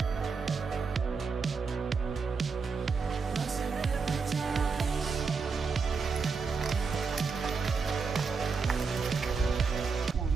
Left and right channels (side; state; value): left; quieter; 4.9 dB